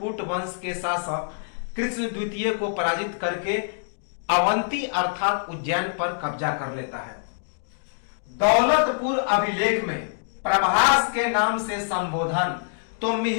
वंश के शासक कृष्ण द्वितीय को पराजित करके अवंती अर्थात उज्जैन पर कब्जा कर लेता है। दौलतपुर अभिलेख में प्रभास के नाम से संबोधन, तो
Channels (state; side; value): silent; right; digital silence